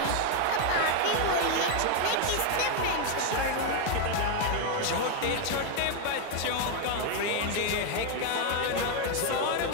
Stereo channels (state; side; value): different; both; correlation 0.01